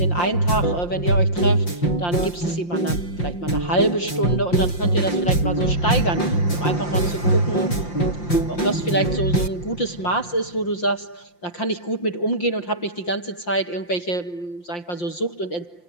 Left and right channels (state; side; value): late; right; 5.7 ms